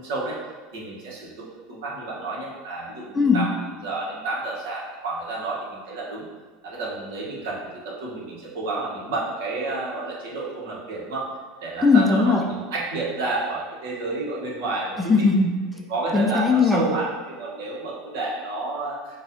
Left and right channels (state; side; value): normal; both; correlation 0.47